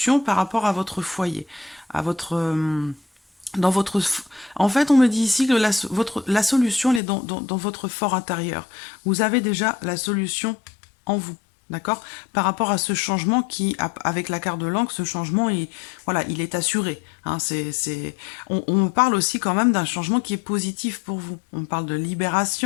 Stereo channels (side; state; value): right; drops out; at 7.0 s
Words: par rapport à votre foyer, à votre... dans votre... En fait, on me dit ici que la solution, elle est dans votre fort intérieur. Vous avez déjà la solution en vous. D'accord. Par rapport à ce changement qui, avec la carte de l'encre, ce changement, voilà, il est assuré. Hein, on me parle aussi quand même d'un changement qui est positif pour vous. On me parle de